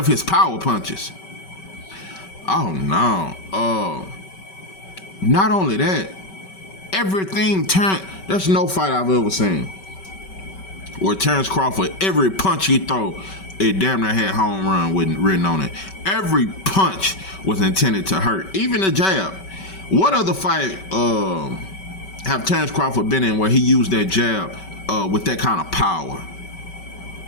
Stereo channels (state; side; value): late; right; 5.2 ms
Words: his power punches. Oh no. Not only that, there's no fight I've ever seen where Terrence Crawford, every punch he throw, it damn near had home run written on it. Every punch was intended to hurt. Even the jab. What other fight have Terrence Crawford been in where he used that jab with that kind of power?